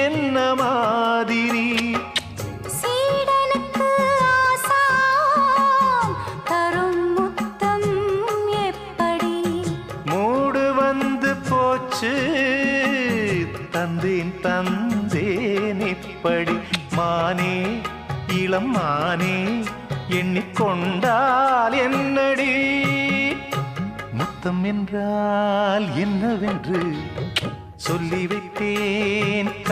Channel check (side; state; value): both; identical; correlation 1.00